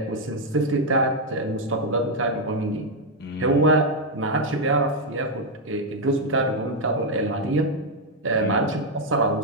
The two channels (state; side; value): normal; both; correlation 0.01